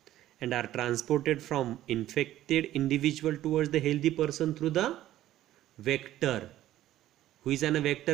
and are transported from infected individual towards the healthy person through the vector. Who is a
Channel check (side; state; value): left; quieter; 13.7 dB